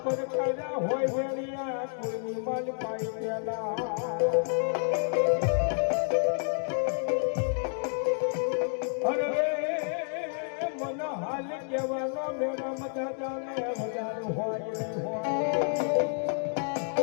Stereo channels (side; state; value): right; silent; 58 dB below the other